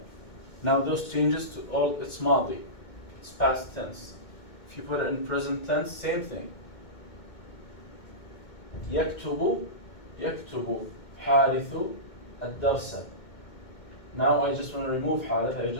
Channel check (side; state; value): right; late; 2.2 ms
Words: Now those changes to all, it's ماضي. It's past tense. If you put it in present tense, same thing. يكتب حارث الدرس. Now I just want to remove حارث. I